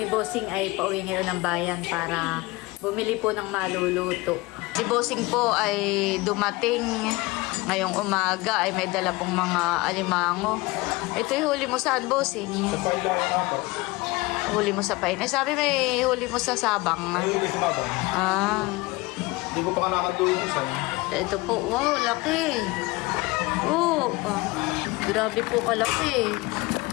Bossing ay pauwi ngayon ng bayan para bumili po ng maluluto. Si Bossing po ay dumating ngayong umaga ay may dala pong mga alimango. Ito yung huli mo saan, Bossing? Sa pailayan ako. Huli mo sa pain. Eh, sabi may huli mo sa Sabang. May huli sa babang. Ah. Hindi ko pa nakatuloy ko sa'yo. Ito po. Wow, laki. Oh. Grabe po kalaki.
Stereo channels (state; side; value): quieter; right; 22.6 dB